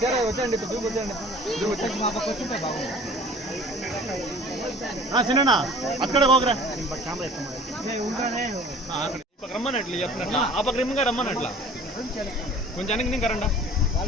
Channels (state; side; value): normal; both; correlation 0.48